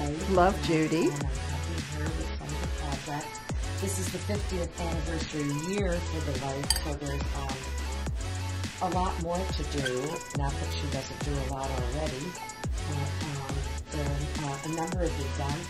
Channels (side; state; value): both; identical; correlation 1.00